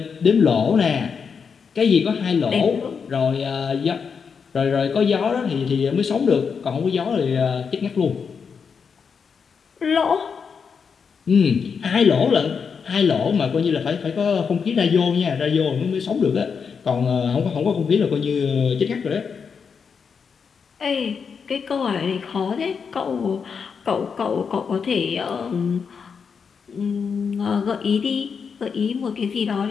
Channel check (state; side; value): quieter; right; 6.1 dB